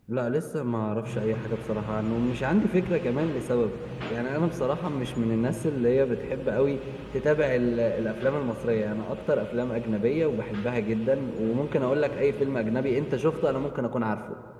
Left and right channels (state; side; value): identical; both; correlation 1.00